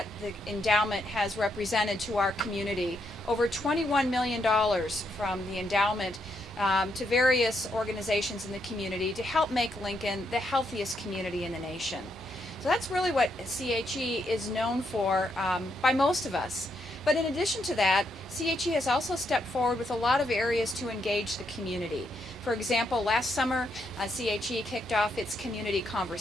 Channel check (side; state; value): both; normal; correlation 0.78